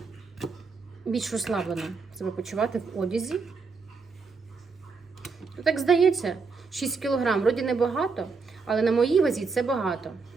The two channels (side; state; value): left; quieter; 4.6 dB